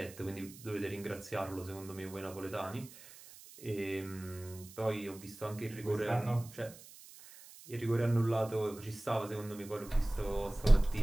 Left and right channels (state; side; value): noise; right; hiss, 18 dB below the sound